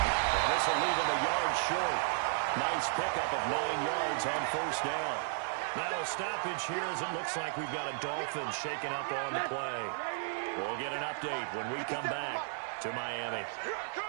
And this will leave him a yard short. Nice pickup of 9 yards on first down. Now a stoppage here as it looks like we've got a Dolphin shaking up on the play. We'll get an update when we come back to Miami.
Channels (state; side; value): silent; left; digital silence